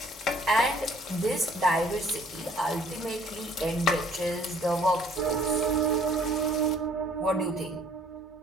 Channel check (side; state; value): both; normal; correlation 0.59